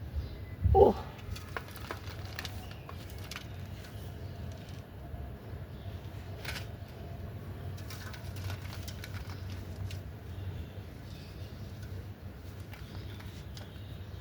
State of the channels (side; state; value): both; identical; correlation 1.00